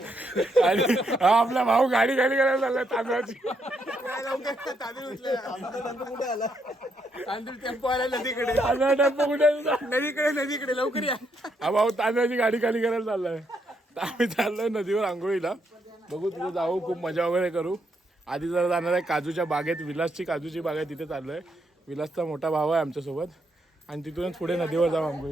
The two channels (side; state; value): both; normal; correlation 0.77